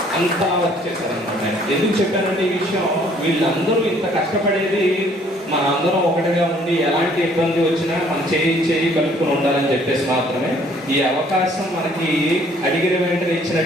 అంతా వర్క్ చేశారనమాట. ఎందుకు చెప్పానంటే ఈ విషయం, వీళ్ళందరూ ఇంత కష్టపడేది మన అందరం ఒకటిగా ఉండి ఎలాంటి ఇబ్బంది వచ్చినా మనం చేయి కలుపుకొని ఉండాలని చెప్పేసి మాత్రమే. ఈ అవకాశం మనకి అడిగిన వెంటనే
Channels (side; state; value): both; normal; correlation 0.60